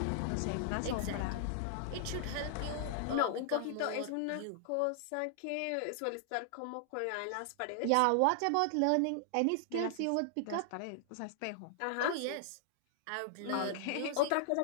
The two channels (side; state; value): both; different; correlation 0.00